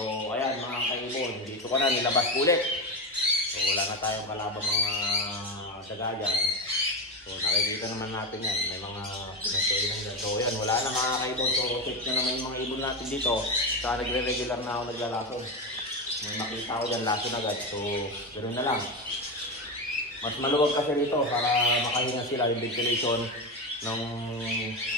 ayan mga kaibon, dito ko na nilabas ulit. So wala na tayong kalabang mga daga dyan. So nakikita naman natin yan, may mga pinagkainan dyan. So yan, wala na mga kaibon. So check na naman yung mga ibon natin dito. Saka nagre-regular na ako naglalason. May makita ko dyan, lason agad. So ganoon na lang. Mas maluwag kasi dito para makahinga sila yung ventilation ng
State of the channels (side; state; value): both; normal; correlation 0.17